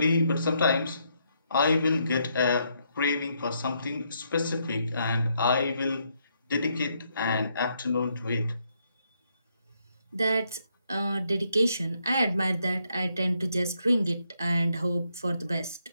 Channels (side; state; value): both; inverted; correlation -0.76